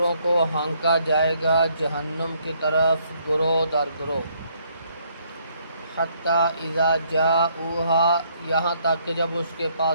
کو ہانکا جائے گا جہنم کی طرف گروہ در گروہ، حتیٰ اذا جاؤہا، یہاں تک کہ جب اس کے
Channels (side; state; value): both; inverted; correlation -0.68